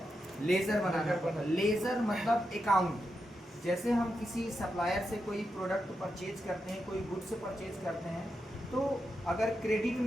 लेजर बनाना पड़ता है। लेजर मतलब अकाउंट। जैसे हम किसी सप्लायर से कोई प्रोडक्ट परचेज करते हैं, कोई गुड्स परचेज करते हैं, तो अगर क्रेडिट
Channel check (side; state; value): both; normal; correlation 0.86